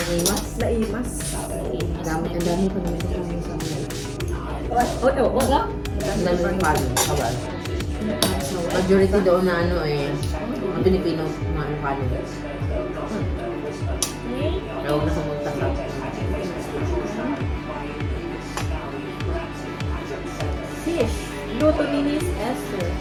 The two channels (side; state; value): both; identical; correlation 1.00